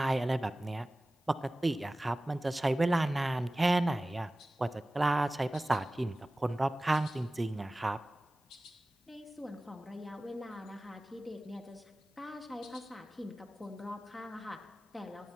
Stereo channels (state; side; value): normal; both; correlation 0.97